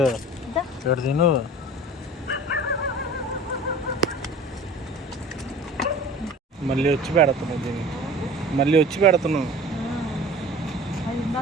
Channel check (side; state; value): both; normal; correlation 0.41